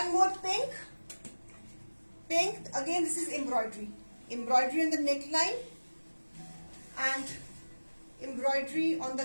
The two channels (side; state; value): both; inverted; correlation -1.00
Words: more pink again, this is embroidery on the neck line and embroidery on the